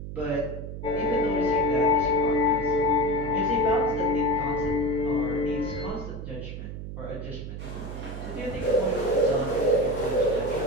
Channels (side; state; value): right; noise; hum, 8 dB below the sound